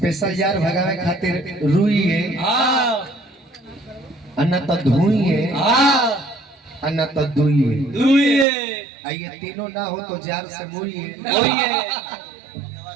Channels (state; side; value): drops out; left; at 8.5 s